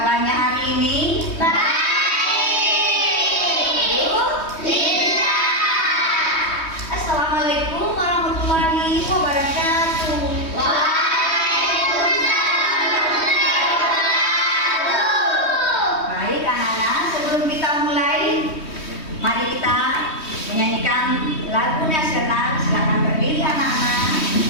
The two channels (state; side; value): late; right; 3.2 ms